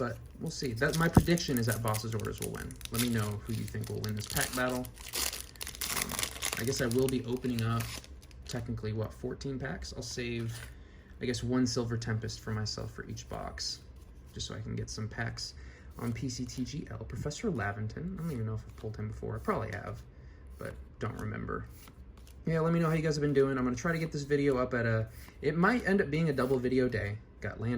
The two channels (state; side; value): identical; both; correlation 1.00